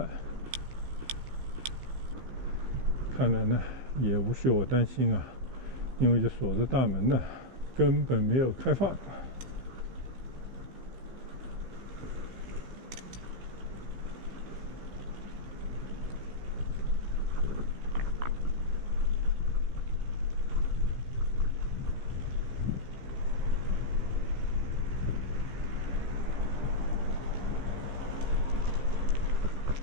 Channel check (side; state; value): left; late; 15 ms